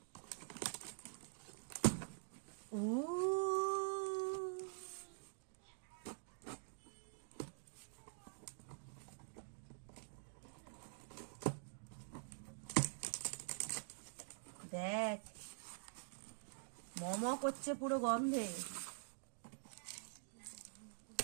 দেখ মম করছে পুরো গন্ধে।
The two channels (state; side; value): silent; left; digital silence